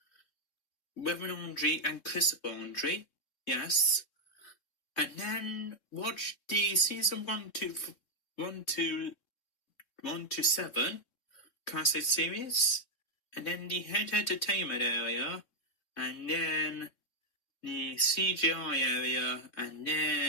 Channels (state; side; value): late; right; 3.6 ms